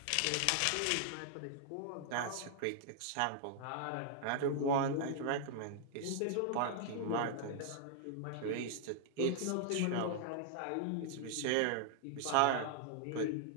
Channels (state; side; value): different; both; correlation 0.00